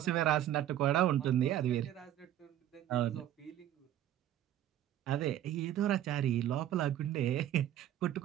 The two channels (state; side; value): quieter; left; 12.1 dB